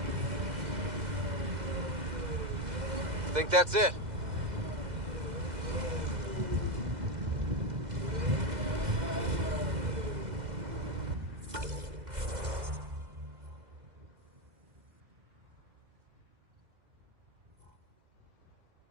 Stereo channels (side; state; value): left; late; 2.0 ms